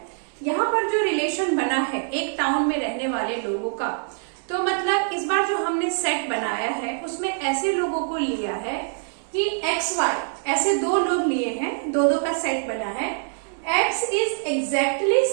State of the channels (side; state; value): left; silent; digital silence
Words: यहाँ पर जो रिलेशन बना है एक टाउन में रहने वाले लोगों का, तो मतलब इस बार जो हमने सेट बनाया है उसमें ऐसे लोगों को लिया है कि एक्स वाई, ऐसे दो लोग लिए हैं, दो का सेट बना है। X is exactly